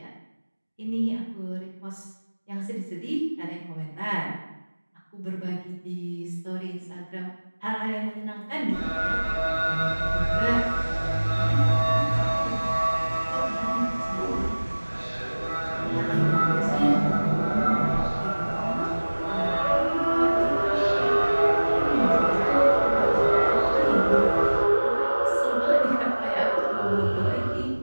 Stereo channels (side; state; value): both; inverted; correlation -1.00